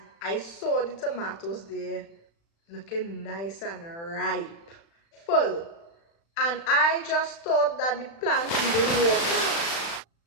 I saw the tomatoes there looking nice and ripe, full. And I just thought that the plant needed water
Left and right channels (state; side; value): late; right; 36 ms